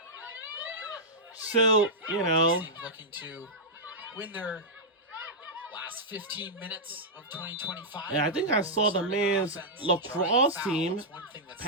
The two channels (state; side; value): normal; both; correlation -0.09